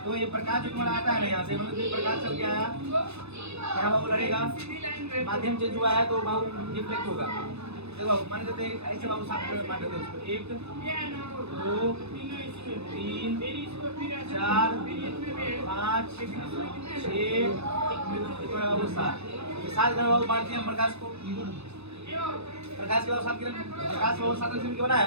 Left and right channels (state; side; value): late; left; 0.80 ms